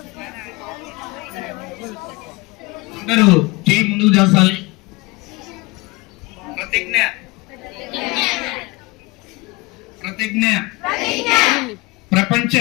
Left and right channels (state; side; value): quieter; right; 23.7 dB